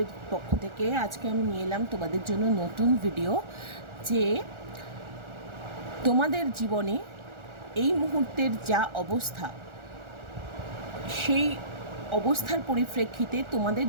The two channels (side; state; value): left; late; 1.4 ms